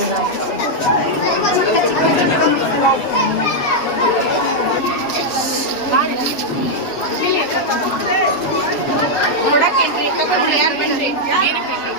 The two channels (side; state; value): right; late; 8.1 ms